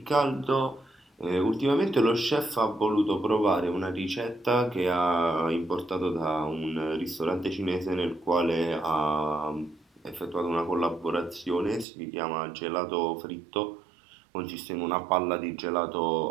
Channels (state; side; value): drops out; left; at 11.9 s